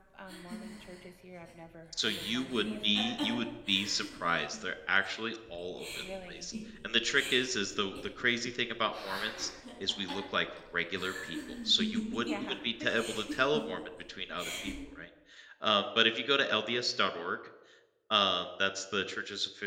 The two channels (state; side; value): identical; both; correlation 1.00